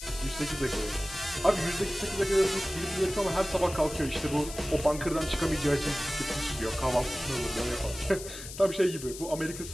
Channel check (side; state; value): left; noise; hiss, 11 dB below the sound